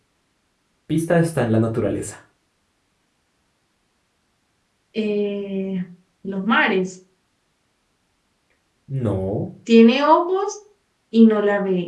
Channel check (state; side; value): identical; both; correlation 1.00